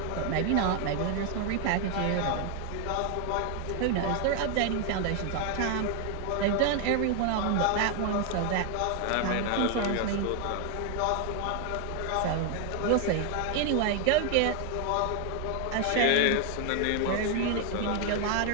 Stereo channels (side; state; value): both; different; correlation 0.00